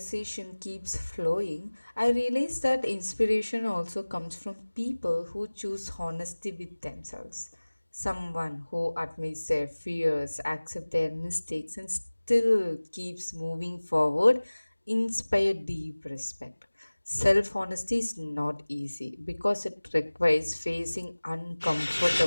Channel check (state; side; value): inverted; both; correlation -1.00